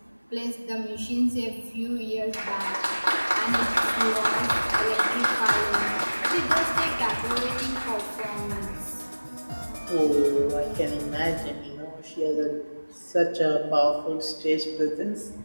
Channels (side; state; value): both; inverted; correlation -1.00